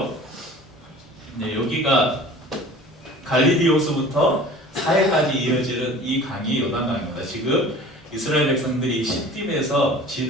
네, 여기가 갈릴리 호수부터 사해까지 이어지는 이 강이 요단강입니다. 지금 이스라엘 백성들이 시딤에서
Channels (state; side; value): normal; both; correlation 0.43